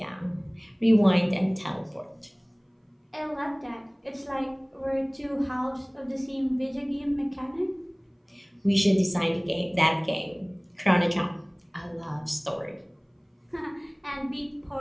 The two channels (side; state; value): both; identical; correlation 1.00